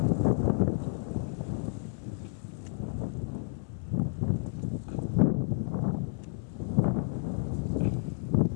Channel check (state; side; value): silent; right; digital silence